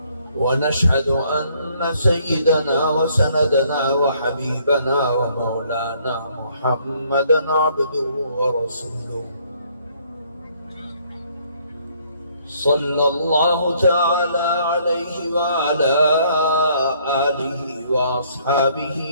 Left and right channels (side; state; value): both; inverted; correlation -0.65